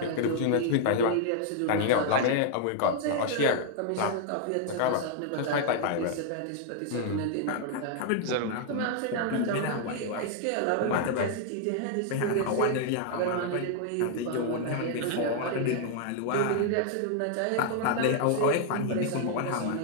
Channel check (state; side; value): different; both; correlation 0.00